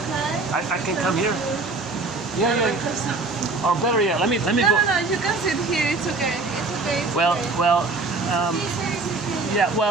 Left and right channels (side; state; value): left; quieter; 3.6 dB